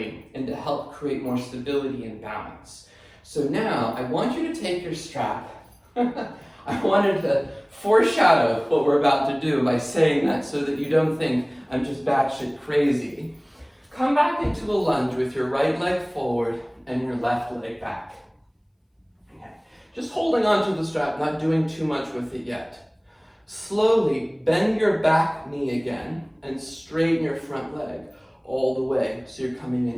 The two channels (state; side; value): identical; both; correlation 1.00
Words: and to help create more stability and balance. So now I want you to take your strap. I wanted to foreshadow what we're about to do by saying that so that you don't think I'm just batshit crazy. Come back into a lunge with your right leg forward and your left leg back. Okay. Just holding onto the strap, not doing too much with it yet. Slowly bend your back knee again and straighten your front leg all the way so you're coming